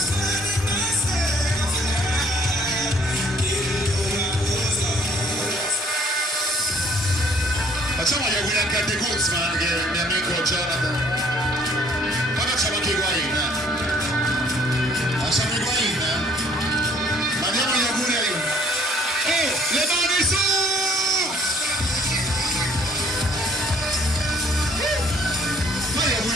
Facciamo gli auguri anche a De Guzman, che è il mio amico Jonathan. Poi facciamo anche Higuain. Facciamo Higuain. Mandiamo gli auguri a Higuain. Oh, le mani su! Fai gli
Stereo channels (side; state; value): both; normal; correlation 0.60